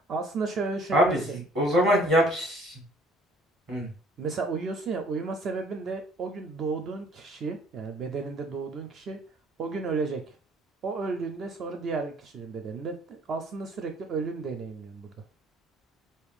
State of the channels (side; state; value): both; normal; correlation 0.57